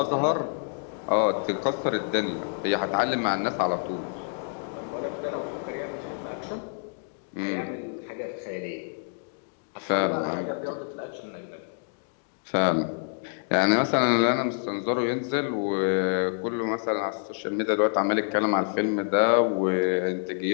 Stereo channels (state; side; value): silent; right; 60 dB below the other